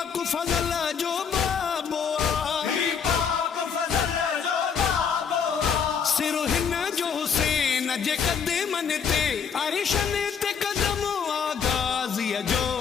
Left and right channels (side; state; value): right; quieter; 6.8 dB